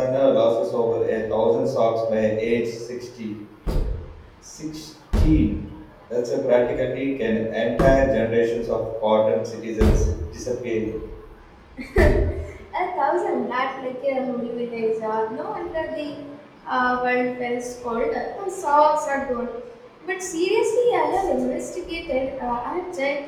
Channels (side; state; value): both; identical; correlation 1.00